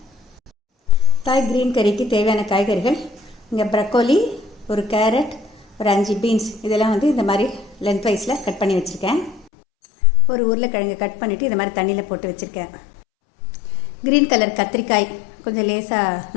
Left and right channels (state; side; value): drops out; right; at 9.5 s